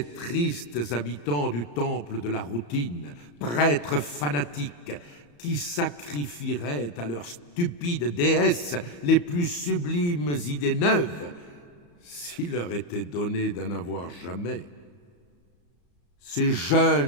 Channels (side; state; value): right; late; 34 ms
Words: tristes habitants du temple de la routine, prêtres fanatiques, qui sacrifieraient à leurs stupides déesses les plus sublimes idées neuves, s'il leur était donné d'en avoir jamais. Ces